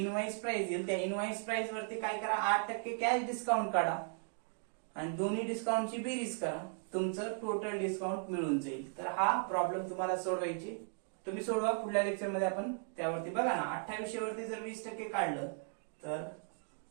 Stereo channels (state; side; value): silent; left; 53 dB below the other